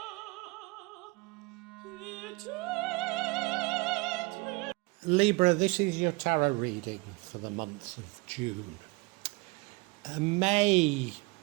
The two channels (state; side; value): quieter; left; 26.4 dB